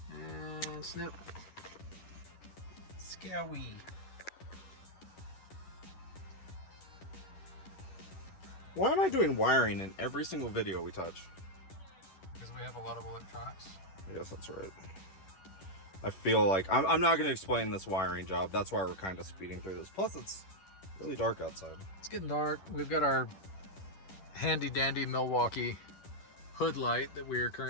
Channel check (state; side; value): late; right; 10 ms